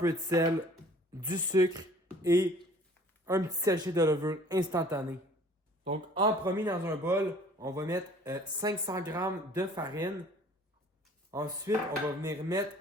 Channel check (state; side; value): normal; both; correlation 0.52